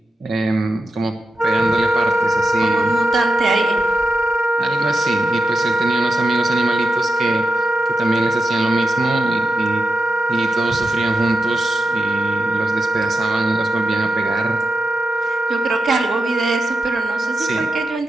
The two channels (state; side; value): normal; both; correlation 0.89